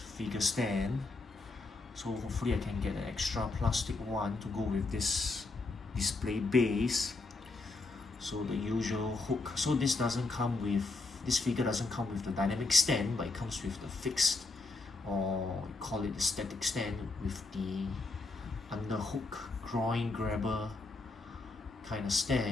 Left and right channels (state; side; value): quieter; right; 3.6 dB